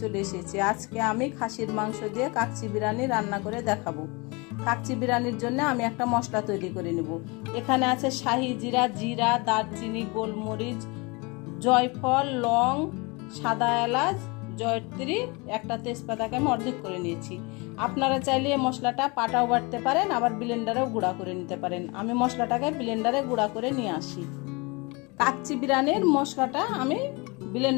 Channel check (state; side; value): quieter; right; 27.7 dB